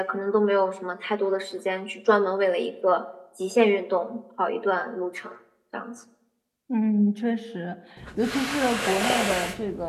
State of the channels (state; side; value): identical; both; correlation 1.00